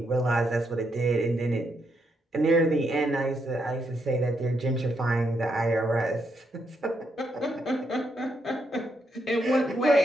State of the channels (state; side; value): normal; both; correlation 0.79